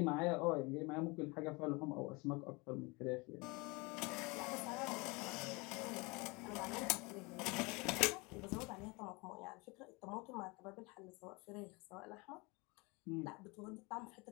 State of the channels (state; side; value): quieter; right; 27.1 dB